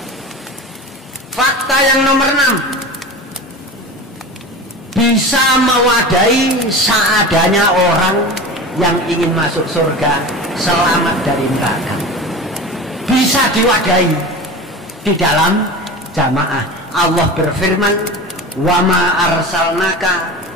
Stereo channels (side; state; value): both; normal; correlation 0.31